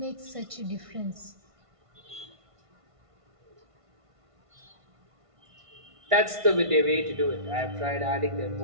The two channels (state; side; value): late; left; 1.5 ms